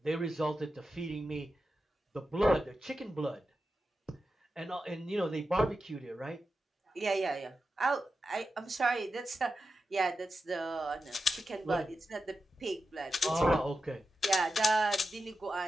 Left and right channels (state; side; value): normal; both; correlation 0.91